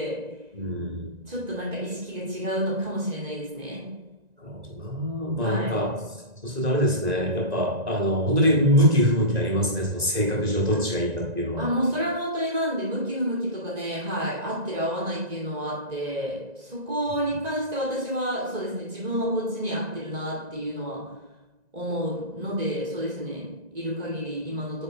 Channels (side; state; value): left; late; 1.9 ms